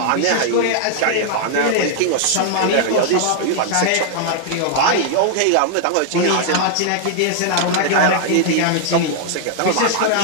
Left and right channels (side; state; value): both; different; correlation -0.01